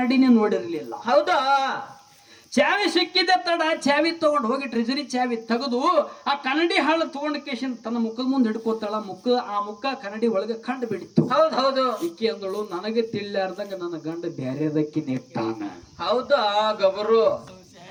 ನೋಡಿರ್ಲಿಲ್ಲ. ಹೌದಾ? ಚಾವಿ ಸಿಕ್ಕಿದ್ದ ತಡ ಚಾವಿ ತಗೊಂಡು ಹೋಗಿ ಟ್ರೆಜರಿ ಚಾವಿ ತೆಗೆದು ಆ ಕನ್ನಡಿ ಹಾಳು ತಗೊಂಡ ಕೇಶನ್ ತನ್ನ ಮುಖದ ಮುಂದೆ ಹಿಡ್ಕೋತಾಳ. ಆ ಮುಖ ಕನ್ನಡಿ ಒಳಗೆ ಕಂಡು ಬಿಡಿತ್ತು. ಹೌದು ಹೌದು. ಇಕ್ಕಿ ಅಂದಳು, ನನಗೆ ತಿಳಿಲಾರ್ದಾಗ ನನ್ನ ಗಂಡ ಬ್ಯಾರೆದಕ್ಕೆ ನೆಟ್ಟಾನ. ಹೌದಾ? ಗಬರು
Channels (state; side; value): identical; both; correlation 1.00